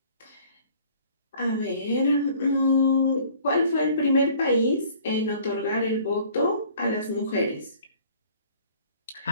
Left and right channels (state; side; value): inverted; both; correlation -0.54